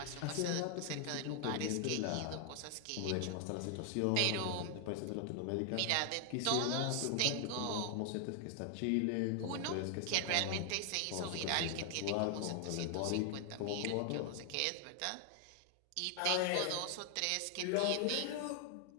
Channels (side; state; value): both; different; correlation 0.00